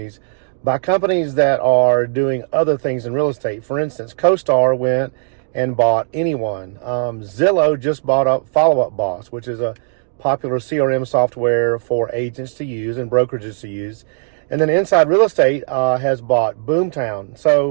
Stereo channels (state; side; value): silent; left; digital silence